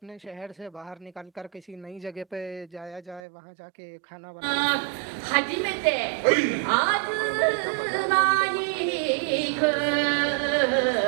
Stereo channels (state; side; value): drops out; left; at 3.2 s